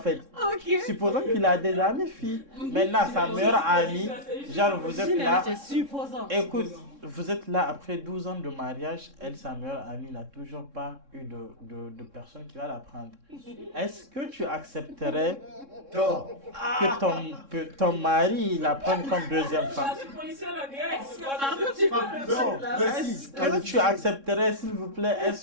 Supposons qu'il a des amis filles. Maintenant, sa meilleure amie, genre vous êtes là. Écoute, vous êtes là après 12 ans de mariage. Elle, sa meilleure amie, n'a toujours pas eu de personne qui va la prendre. Est-ce que tu accepterais que ton mari la prenne comme deuxième femme? Est-ce que tu accepterais, s'il vous plaît,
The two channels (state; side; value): late; left; 3.6 ms